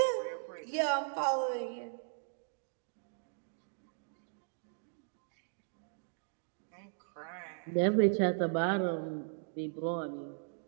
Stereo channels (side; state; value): left; silent; digital silence